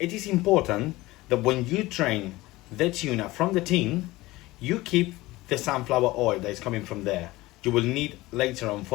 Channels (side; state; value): right; quieter; 19.2 dB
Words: is important that when you drain the tuna from the tin, you keep the sunflower oil that is coming from there. You will need later on